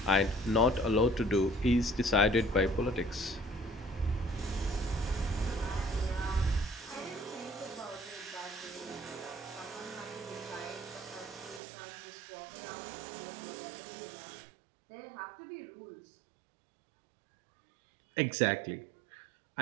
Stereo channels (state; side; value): drops out; left; at 11.6 s